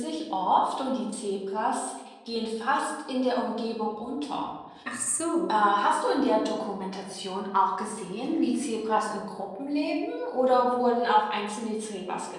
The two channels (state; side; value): identical; both; correlation 1.00